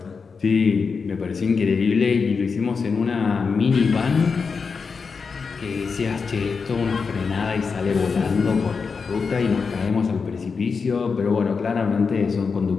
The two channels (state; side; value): quieter; right; 5.2 dB